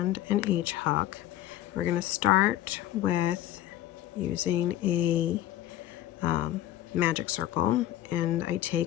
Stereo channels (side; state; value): right; quieter; 13.5 dB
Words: an H hook. We're going to start with using a magic circle, and I